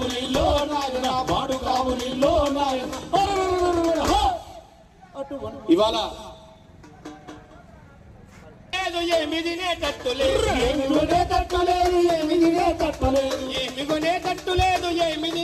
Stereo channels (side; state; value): both; identical; correlation 1.00